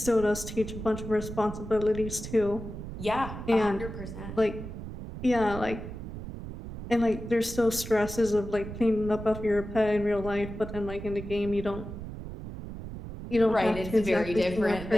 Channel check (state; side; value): noise; right; rumble, 9 dB below the sound